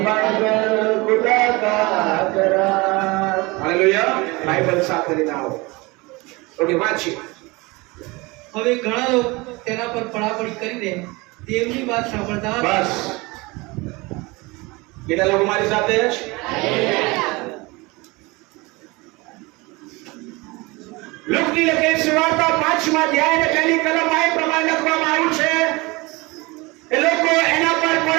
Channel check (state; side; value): quieter; left; 24.3 dB